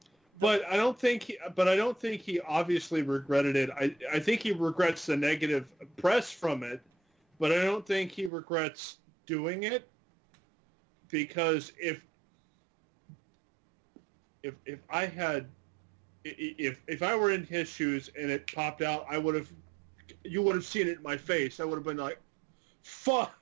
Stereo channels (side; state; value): left; drops out; at 8.3 s